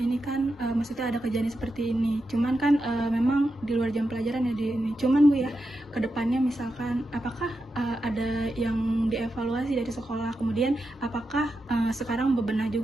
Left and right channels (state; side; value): normal; both; correlation 0.88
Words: kan maksudnya ada kejadian seperti ini. Cuman kan memang di luar jam pelajaran ya di ini. Cuman Bu ya, kedepannya misalkan apakah ada yang dievaluasi dari sekolah? Kemudian apakah sekarang bebenah